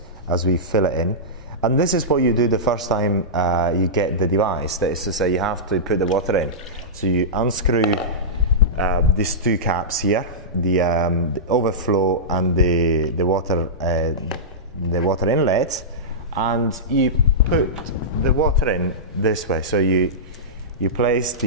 as we fill it in. And this is what you do the first time you get the device. That is to say, you have to put the water in. So you unscrew these two caps here, the overflow and the water inlet, and you put the water in this way. So you place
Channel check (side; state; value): both; normal; correlation -0.15